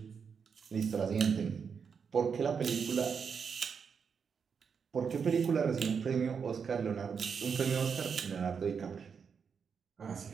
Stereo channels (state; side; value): quieter; left; 6.3 dB